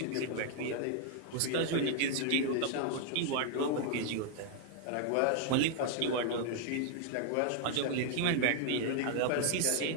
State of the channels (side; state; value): both; different; correlation 0.00